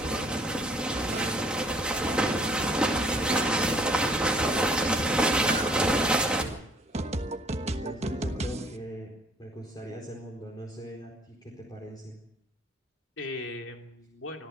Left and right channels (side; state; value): both; normal; correlation 0.59